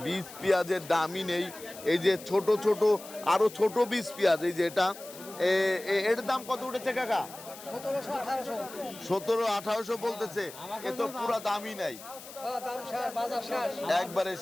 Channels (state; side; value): noise; left; hiss, 16 dB below the sound